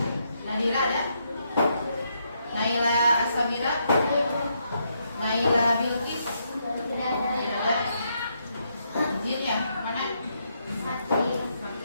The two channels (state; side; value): inverted; both; correlation -0.77